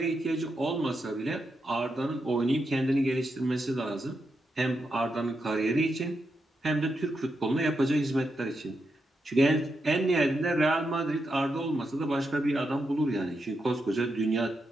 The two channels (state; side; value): normal; both; correlation 0.84